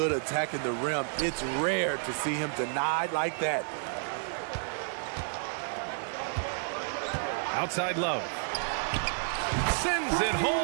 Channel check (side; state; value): left; silent; digital silence